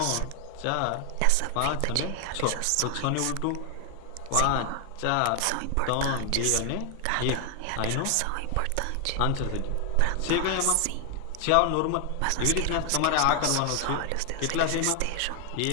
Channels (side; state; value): both; different; correlation 0.00